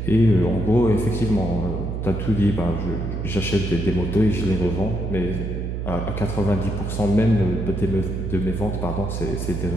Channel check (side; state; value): right; noise; hum, 4 dB below the sound